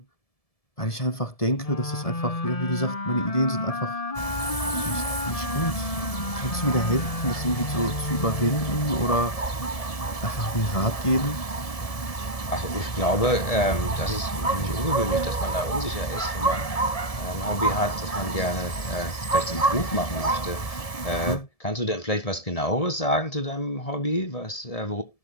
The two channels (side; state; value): right; late; 1.7 ms